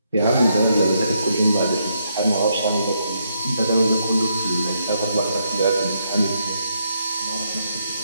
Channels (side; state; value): both; inverted; correlation -0.77